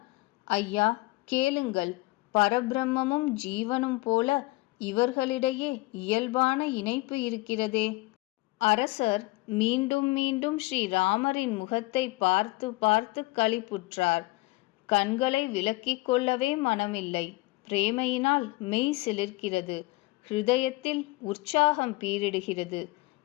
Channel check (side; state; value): right; quieter; 22.0 dB